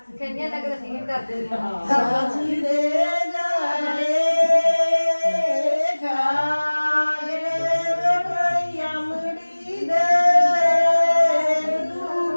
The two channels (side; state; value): both; inverted; correlation -1.00